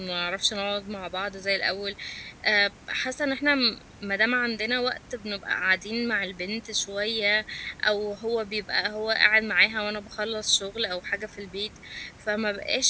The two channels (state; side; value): identical; both; correlation 1.00